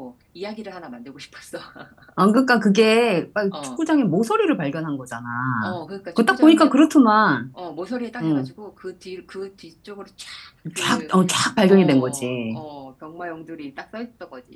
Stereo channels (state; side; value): identical; both; correlation 1.00